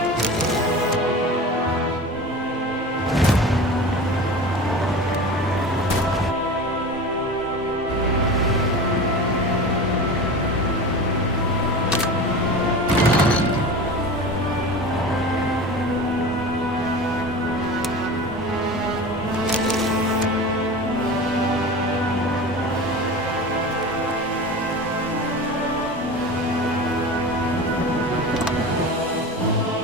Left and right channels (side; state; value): both; normal; correlation 0.32